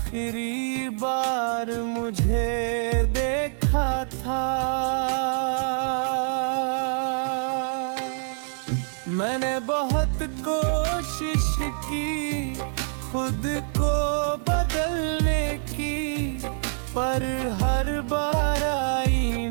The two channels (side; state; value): left; silent; digital silence